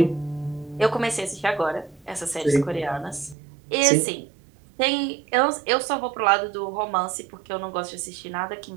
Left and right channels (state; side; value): drops out; left; at 3.4 s